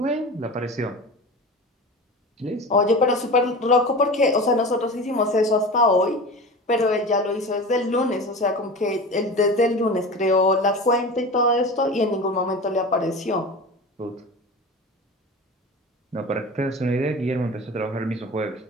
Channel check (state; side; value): normal; both; correlation 0.32